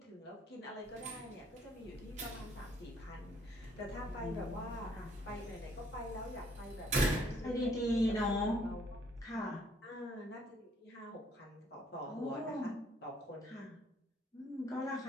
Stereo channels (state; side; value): normal; both; correlation 0.64